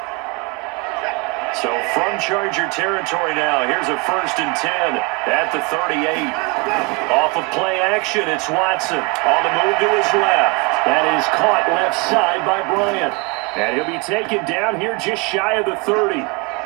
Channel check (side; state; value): left; quieter; 28.8 dB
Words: So from Charger territory now, here's a 1st and 10 at the 38. Off of play action, it's Watson on the move to his left. That is caught left side by Bryant. And he'll be taken down here just shy of the 30.